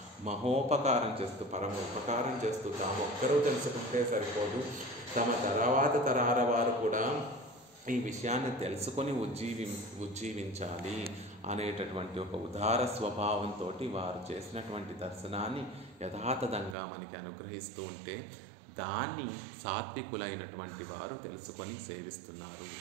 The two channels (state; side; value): drops out; left; at 16.8 s